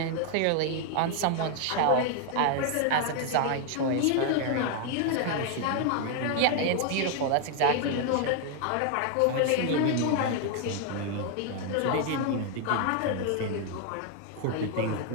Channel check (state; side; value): different; both; correlation 0.00